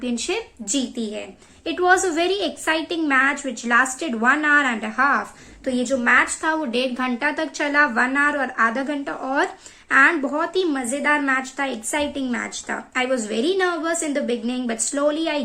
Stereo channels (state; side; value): identical; both; correlation 1.00